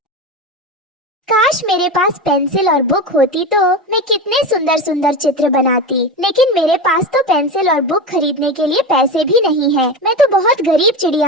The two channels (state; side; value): normal; both; correlation 0.23